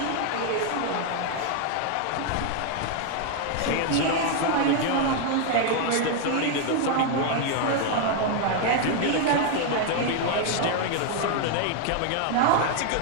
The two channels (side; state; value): both; different; correlation 0.00